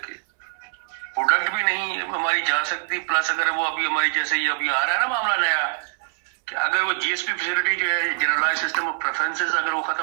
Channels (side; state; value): left; silent; 63 dB below the other